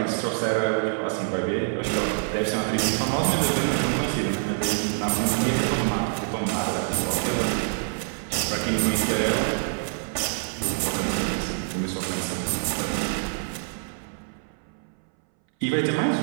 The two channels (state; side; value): silent; left; 61 dB below the other